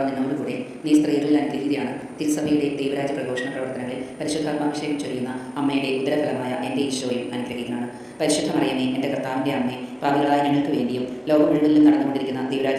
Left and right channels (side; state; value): both; identical; correlation 1.00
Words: നിന്നോടുകൂടെ, നീ സ്ത്രീകളിൽ അനുഗ്രഹീതയാണ്. തിരുസഭയുടെ ദൈവരാജ്യ പ്രഘോഷണ പ്രവർത്തനങ്ങളിൽ പരിശുദ്ധാത്മാഭിഷേകം ചൊരിയുന്ന അമ്മയുടെ ഉദരഫലമായ എൻ്റെ ഈശോയും അനുഗ്രഹീതനാണ്. പരിശുദ്ധ മറിയമേ, എൻ്റെ കർത്താവിൻ്റെ അമ്മേ, പാപികളായ ഞങ്ങൾക്ക് വേണ്ടിയും ലോകം മുഴുവനിലും നടന്നുകൊണ്ടിരിക്കുന്ന